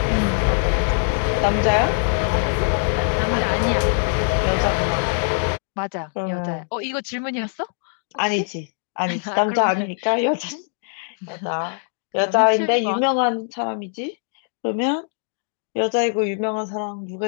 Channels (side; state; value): right; silent; digital silence